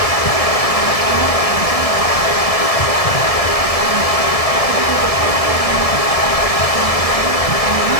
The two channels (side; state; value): right; late; 1.6 ms